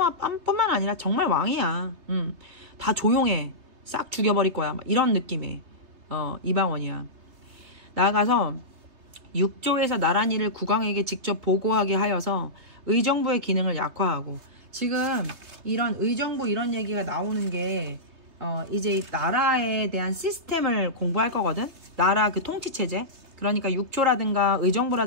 아니라 정말 왕이야. 다 조용해. 싹 죽여버릴 거야. 막 이런 느낌의 이방원이야. 나아가서 육조에서 나란 일을 국왕에게 직접 보고하게 하여서 의정부의 기능을 약화하고, 지금 이런 의정부 이런 얘기가 나오는 게 이제 나라에 대한 시스템을 공부할 거거든. 나라 그 통치체제. 그러니까 육조라든가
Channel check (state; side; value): late; left; 3.3 ms